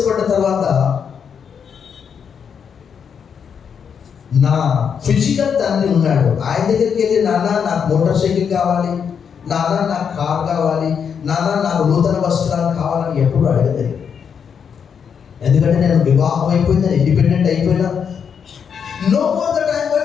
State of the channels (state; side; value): quieter; right; 7.1 dB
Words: తర్వాత నా ఫిజికల్ తండ్రి ఉన్నాడు. ఆయన దగ్గరికి వెళ్ళి, నాన్న నాకు మోటార్ సైకిల్ కావాలి, నాన్న నాకు కార్ కావాలి, నాన్న నాకు నూతన వస్త్రాలు కావాలని ఎప్పుడు అడగలేదు. ఎందుకంటే నేను వివాహం అయిపోయింది, ఇండిపెండెంట్ అయిపోయినా. No more that I am